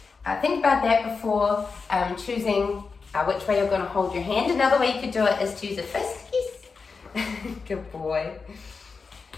think about that before choosing which way you're going to hold your hand. Another way you could do it is to use a fist. Yes, good boy.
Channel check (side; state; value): right; quieter; 4.8 dB